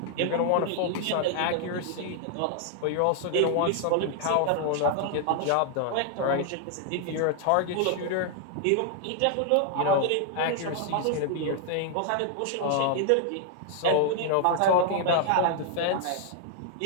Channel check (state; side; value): different; both; correlation 0.00